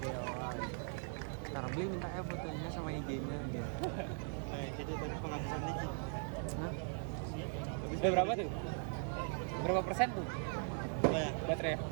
Ntar beli minta ya fotonya sama IG-nya dia. Jadi tadi penghabisan listrik. Udah berapa tuh? Berapa persen tuh Banyak. baterai?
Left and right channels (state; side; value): silent; left; 51 dB below the other